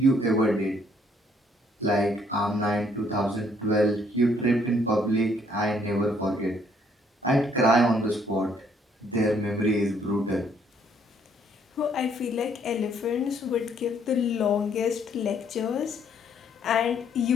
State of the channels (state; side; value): normal; both; correlation 0.66